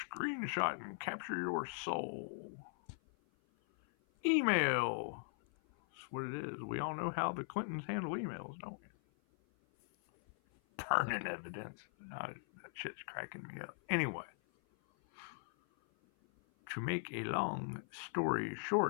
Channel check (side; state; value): right; silent; 51 dB below the other